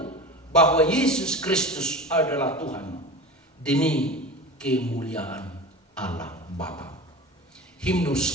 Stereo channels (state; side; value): normal; both; correlation 0.32